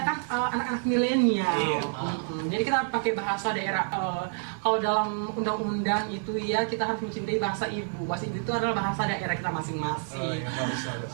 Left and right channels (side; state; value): left; silent; 58 dB below the other